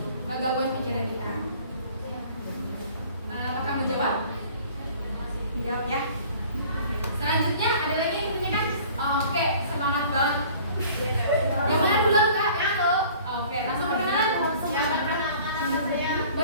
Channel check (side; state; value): both; inverted; correlation -0.50